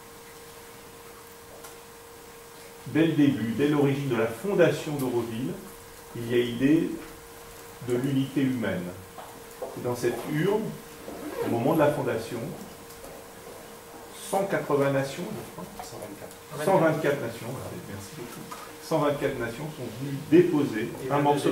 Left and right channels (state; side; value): identical; both; correlation 1.00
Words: Dès le début, dès l'origine de la fondation d'Auroville, il y a l'idée de l'unité humaine. Et dans cette urne, au moment de la fondation, 180 nations, je crois, 124 nations, merci beaucoup, 124 nations sont venues déposer un morceau